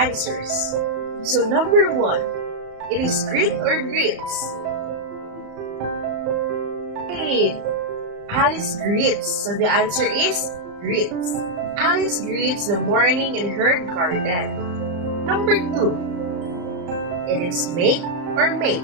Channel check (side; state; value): left; late; 34 ms